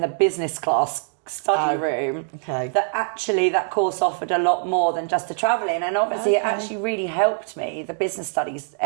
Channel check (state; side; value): silent; left; digital silence